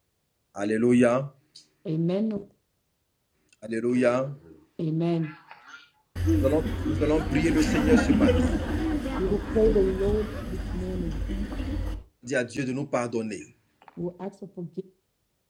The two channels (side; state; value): both; identical; correlation 1.00